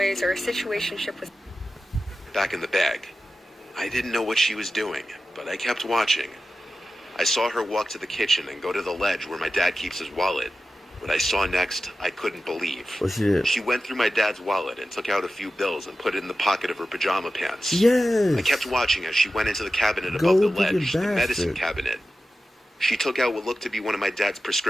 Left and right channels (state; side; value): normal; both; correlation 0.93